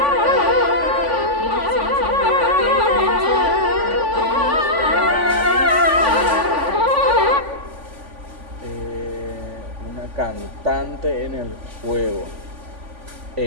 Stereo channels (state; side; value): late; left; 3.5 ms